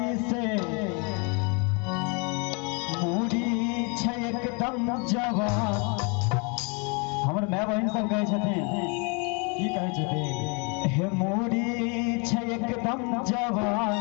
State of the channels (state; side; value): quieter; right; 33.4 dB